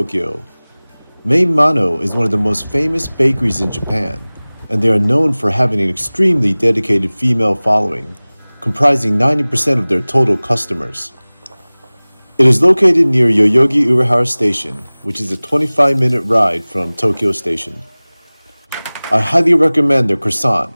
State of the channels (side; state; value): both; inverted; correlation -1.00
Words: Main Mano is one of the most famous bakeries in Japan, and they are known for having an extremely dedicated female following, comprising 90% of their total customers. It is located near Yoyogi Urahara Station, which is a 25-minute ride from Tokyo Station. I highly recommend their